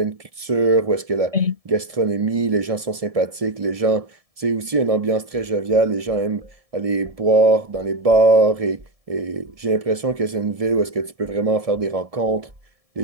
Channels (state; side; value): late; left; 1.7 ms